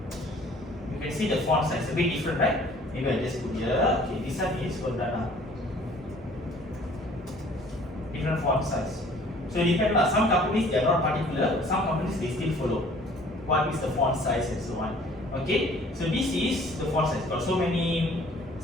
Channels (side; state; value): both; normal; correlation 0.54